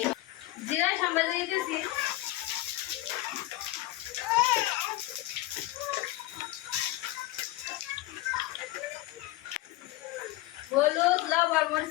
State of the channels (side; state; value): right; quieter; 17.5 dB